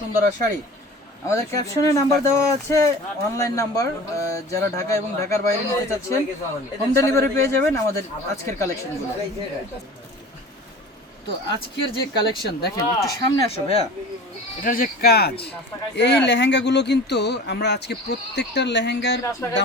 শাড়ি। আমাদের ক্যাপশনে নাম্বার দেওয়া আছে, অনলাইন নাম্বার। যারা ঢাকা এবং ঢাকার বাইরে নিতে চাচ্ছেন হোম ডেলিভারি পেয়ে যাবেন আমাদের আজকের কালেকশনগুলো। তো আজকের যে কালেকশন দেখেন, একটু সামনে আসো ভাইয়া। এটার যে কাজ, এই লেহেঙ্গাগুলো কিন্তু আমরা আজকে প্রত্যেকটার লেহেঙ্গার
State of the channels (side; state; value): both; normal; correlation 0.39